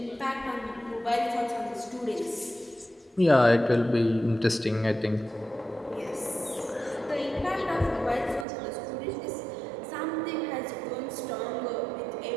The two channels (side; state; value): left; drops out; at 8.5 s